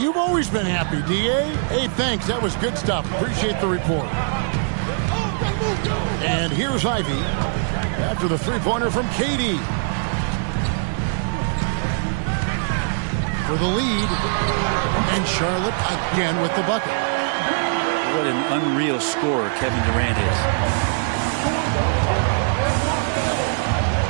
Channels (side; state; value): left; silent; 57 dB below the other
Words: always been happy, D.A. Hey, thanks. That was good stuff. Appreciate the report. And here's Ivy after the three-pointer from KD. For the lead. And Charlotte again with the bucket. What an unreal scorer Kevin Durant is.